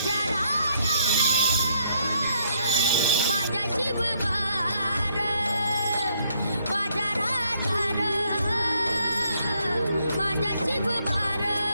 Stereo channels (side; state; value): both; inverted; correlation -0.70